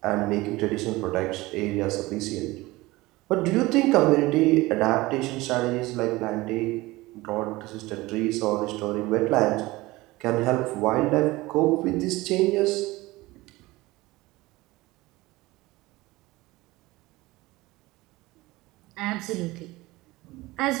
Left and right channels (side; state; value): left; quieter; 20.2 dB